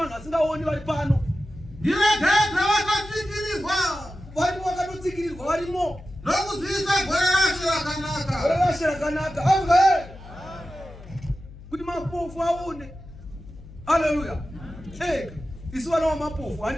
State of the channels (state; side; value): noise; left; hum, 17 dB below the sound